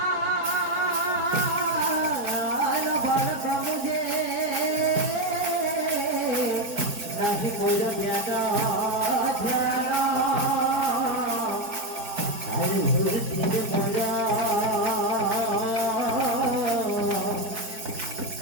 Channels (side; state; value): left; late; 4.6 ms